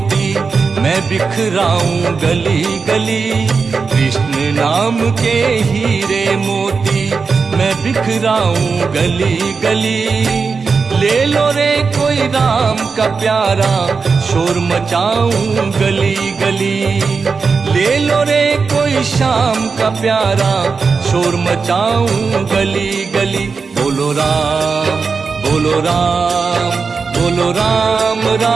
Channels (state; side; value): quieter; left; 5.0 dB